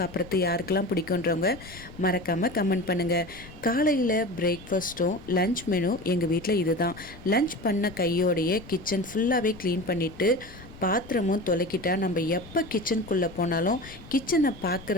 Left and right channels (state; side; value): noise; left; rumble, 18 dB below the sound